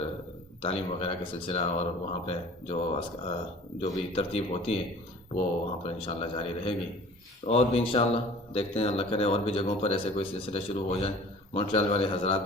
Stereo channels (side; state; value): both; normal; correlation 0.46